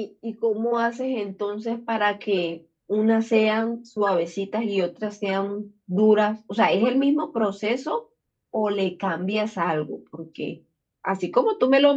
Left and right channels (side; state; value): both; identical; correlation 1.00